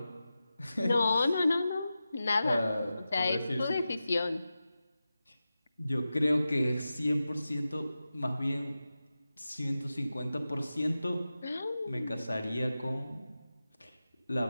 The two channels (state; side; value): inverted; both; correlation -0.93